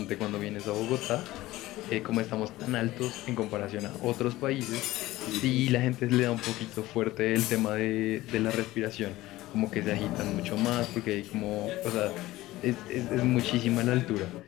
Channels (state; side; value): quieter; right; 17.2 dB